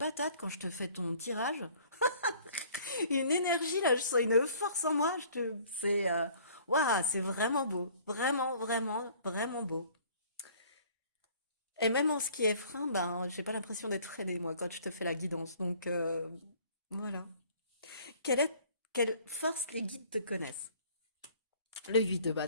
quand je te fais ton tirage. Une énergie, là, je sens une force en moi. Waouh, c'est vraiment beau. Vraiment, vraiment, vraiment beau. Et même en ce qui est frein, ben, j'ai pas l'impression d'être freinée, moi, quand je te fais la guidance. Donc, voilà. Quelle force les guides te connaissent? Le 8 de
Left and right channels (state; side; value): inverted; both; correlation -0.54